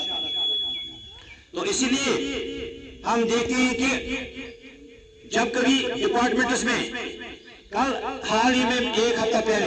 तो इसीलिए हम देखते हैं कि जब कभी डिपार्टमेंट्स में, कल हाल ही में 1 हफ्ता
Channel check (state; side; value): identical; both; correlation 1.00